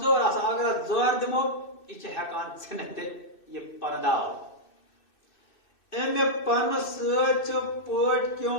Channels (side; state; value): right; late; 2.6 ms